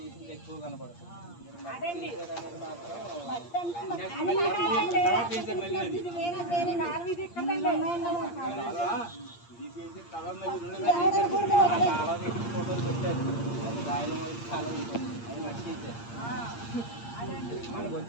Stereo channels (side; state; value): right; late; 8.6 ms